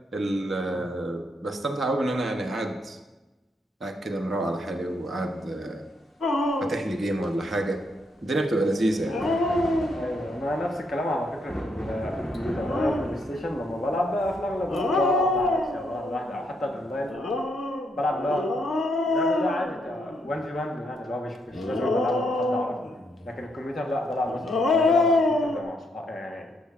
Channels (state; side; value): normal; both; correlation 0.76